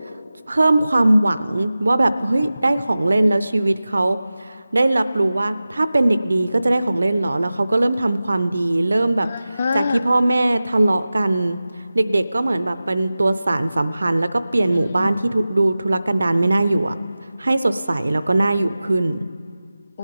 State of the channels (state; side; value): inverted; both; correlation -0.96